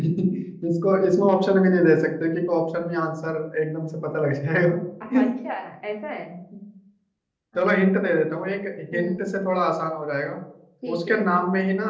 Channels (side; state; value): both; identical; correlation 1.00